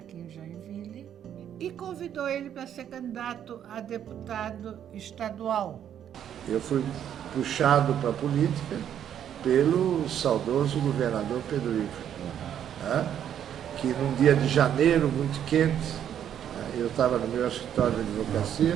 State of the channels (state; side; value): quieter; left; 9.7 dB